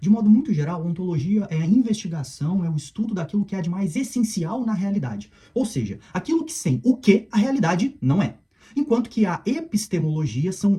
De modo muito geral, a ontologia é a investigação, é o estudo daquilo que há de mais essencial na realidade. Ou seja, aquilo que sem o que a realidade não é. Enquanto que a epistemologia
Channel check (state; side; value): identical; both; correlation 1.00